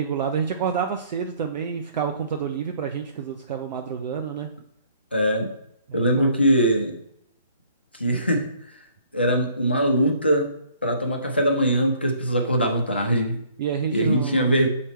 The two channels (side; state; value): both; inverted; correlation -0.60